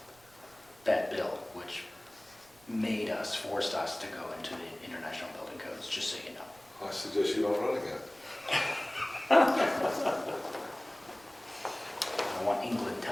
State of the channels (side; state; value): right; noise; rumble, 28 dB below the sound